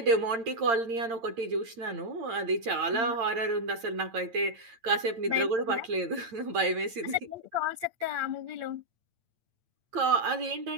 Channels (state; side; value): late; left; 8.8 ms